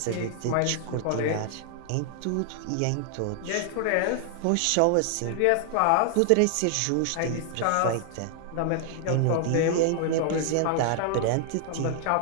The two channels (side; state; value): both; different; correlation 0.00